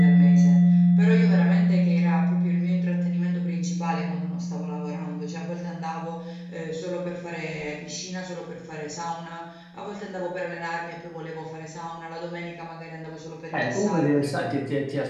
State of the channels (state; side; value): identical; both; correlation 1.00